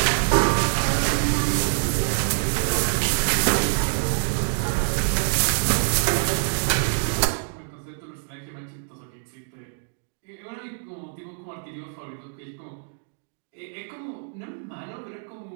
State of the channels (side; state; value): left; silent; digital silence